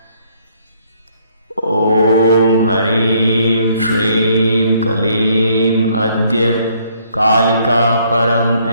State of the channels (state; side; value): inverted; both; correlation -0.66